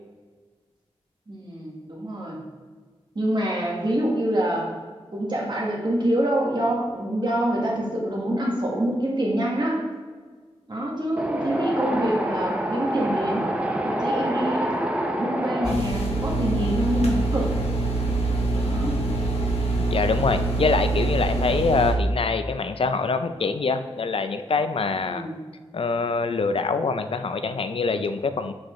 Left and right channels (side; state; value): both; normal; correlation 0.71